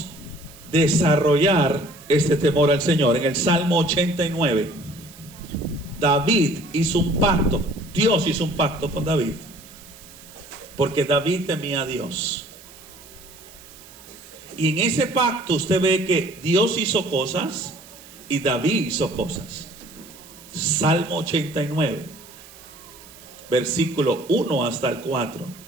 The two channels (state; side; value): noise; right; hiss, 21 dB below the sound